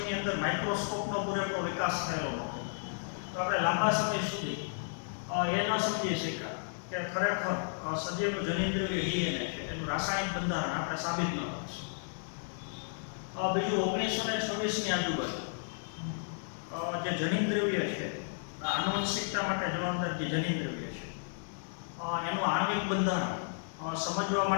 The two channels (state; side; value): silent; right; digital silence